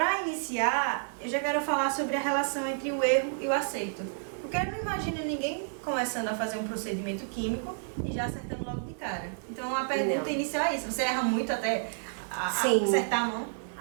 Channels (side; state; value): left; silent; 58 dB below the other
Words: iniciar, eu já quero falar sobre a relação entre o erro e o acerto. Porque eu não imagino ninguém começando a fazer um procedimento químico e já acertando logo de cara. Então, a pergunta inicial é isso. Você erra muito até acertar a mão?